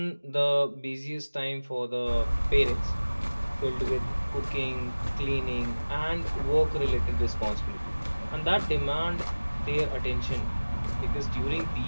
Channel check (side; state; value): both; inverted; correlation -1.00